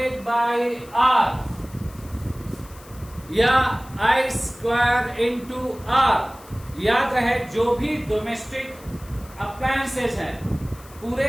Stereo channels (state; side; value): noise; left; hiss, 22 dB below the sound